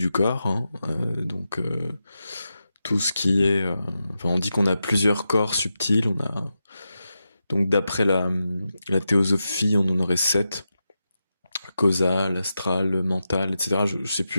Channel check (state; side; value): inverted; both; correlation -0.89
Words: corps, hein. Tout ce qui est, enfin, on dit qu'on a plusieurs corps subtils. On a donc d'après la théosophie, on en aurait sept: causal, astral, mental, etc. Je sais plus